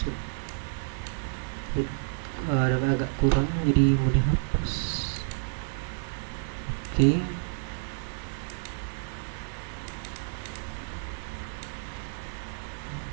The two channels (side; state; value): left; silent; 58 dB below the other